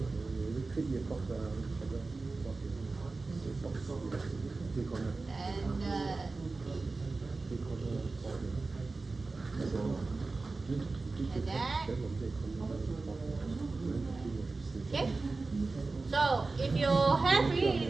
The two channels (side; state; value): left; quieter; 3.7 dB